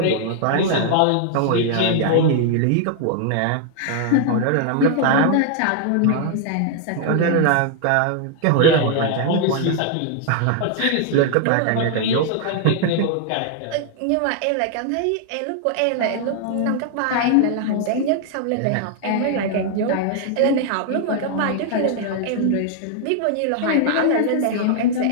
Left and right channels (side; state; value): both; different; correlation 0.00